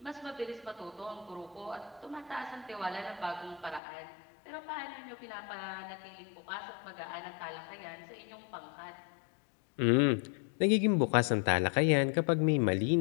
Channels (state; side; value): drops out; right; at 3.8 s